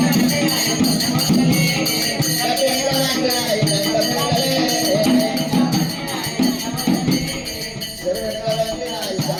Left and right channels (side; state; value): both; identical; correlation 1.00